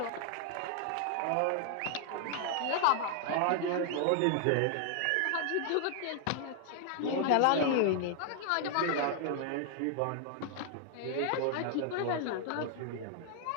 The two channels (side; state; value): both; different; correlation 0.00